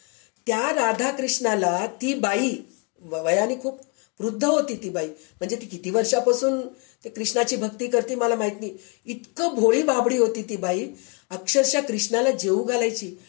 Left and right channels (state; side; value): quieter; right; 33.3 dB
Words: त्या राधाकृष्णाला ती बाई वयाने खूप वृद्ध होती ती बाई, म्हणजे ती किती वर्षापासून ते कृष्णाची भक्ती करते मला माहित नाही. इतकं भोळी बाबडी होती ती बाई, अक्षरशः कृष्णाला जेवू घालायची